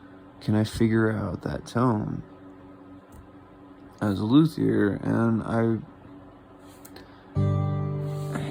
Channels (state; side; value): identical; both; correlation 1.00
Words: Can I figure out that tone? as a luthier, and I